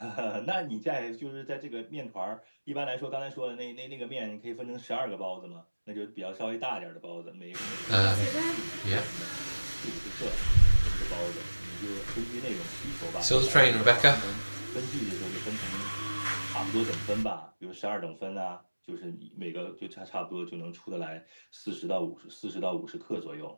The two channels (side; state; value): both; inverted; correlation -1.00